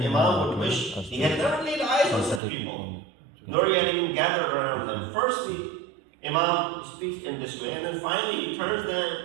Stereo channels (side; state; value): left; drops out; at 2.4 s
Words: would wish he had never laid eyes on such people, nor he had even gathered around them. Firstly, Imam speaks in this way, and then finally he turns